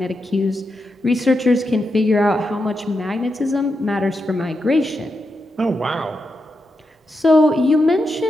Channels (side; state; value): both; normal; correlation 0.86